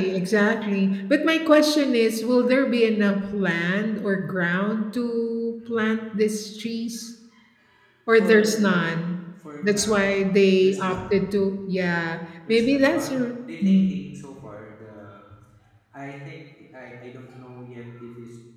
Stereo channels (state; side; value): identical; both; correlation 1.00